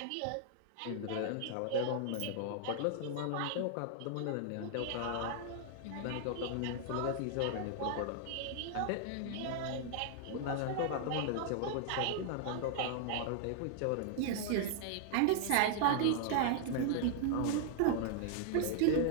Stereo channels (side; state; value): both; different; correlation 0.00